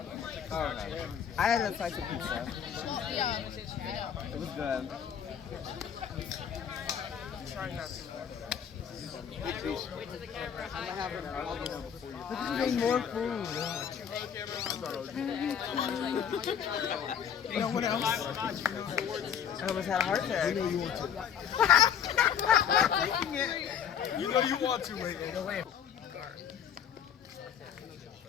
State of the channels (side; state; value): right; quieter; 8.2 dB